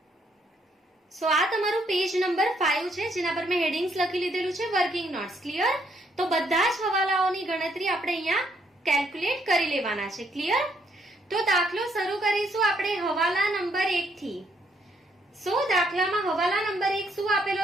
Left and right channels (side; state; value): both; normal; correlation 0.71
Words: સો આ તમારું પેજ નંબર 5 છે જેના પર મેં હેડિંગ્સ લખી લીધેલું છે વર્કિંગ નોટ્સ. ક્લિયર? તો બધા જ હવાલાઓની ગણતરી આપણે અહીંયા કેલ્ક્યુલેટ કરી લેવાના છે. ક્લિયર? તો દાખલો શરૂ કરીશું આપણે હવાલા નંબર 1 થી. સો દાખલામાં હવાલા નંબર 1 શું આપેલો